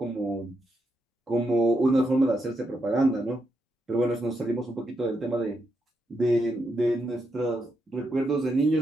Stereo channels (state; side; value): normal; both; correlation 0.82